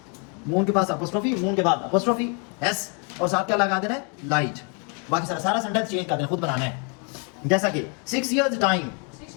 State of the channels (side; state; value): right; quieter; 37.0 dB